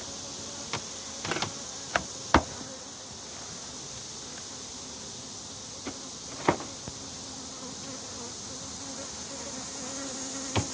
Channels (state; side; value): identical; both; correlation 1.00